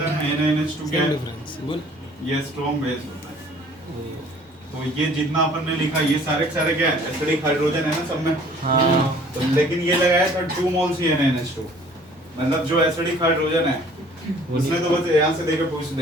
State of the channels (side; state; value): both; normal; correlation 0.54